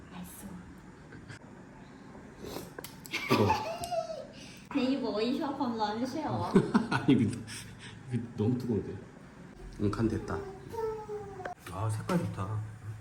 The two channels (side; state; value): both; identical; correlation 1.00